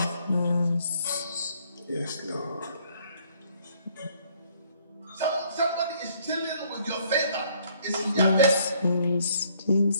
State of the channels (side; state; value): both; inverted; correlation -0.64